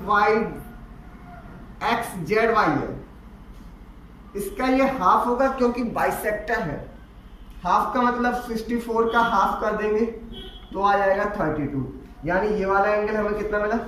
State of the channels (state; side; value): identical; both; correlation 1.00